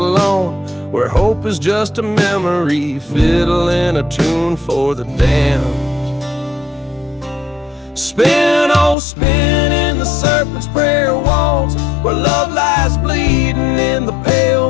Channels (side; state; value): right; drops out; at 9.0 s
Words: where hope is just a memory, fiddling a tune for the damned. Spin, oh spin in the serpent's prayer walls, where love lies bleeding in the pale